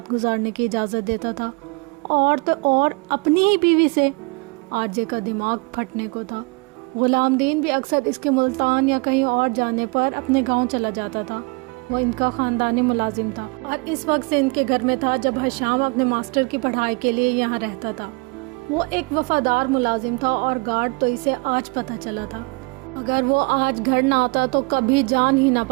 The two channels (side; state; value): left; quieter; 29.5 dB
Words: گزارنے کی اجازت دیتا تھا، اور تو اور اپنی ہی بیوی سے۔ آرجے کا دماغ پھٹنے کو تھا۔ غلام دین بھی اکثر اس کے ملتان یا کہیں اور جانے پر اپنے گاؤں چلا جاتا تھا۔ وہ ان کا خاندانی ملازم تھا اور اس وقت سے ان کے گھر میں تھا جب حشام اپنے ماسٹر کی پڑھائی کے لیے یہاں رہتا تھا۔ وہ ایک وفادار ملازم تھا اور گارڈ تو اسے آج پتہ چلا تھا۔ اگر وہ آج گھر نہ آتا تو کبھی جان ہی نہ